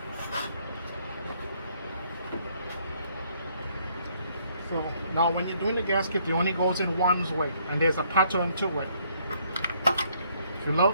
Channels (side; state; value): both; inverted; correlation -0.68